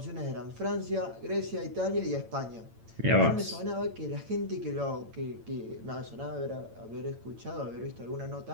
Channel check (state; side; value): late; left; 8.9 ms